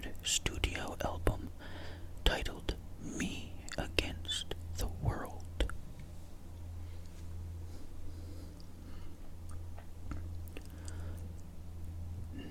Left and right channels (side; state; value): both; identical; correlation 1.00